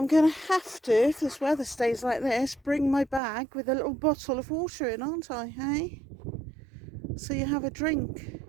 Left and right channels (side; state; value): left; drops out; at 3.2 s